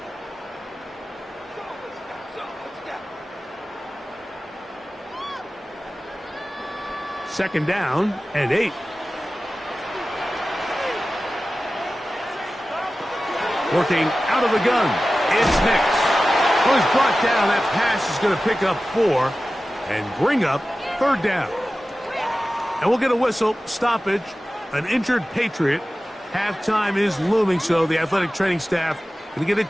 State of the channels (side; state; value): both; normal; correlation 0.95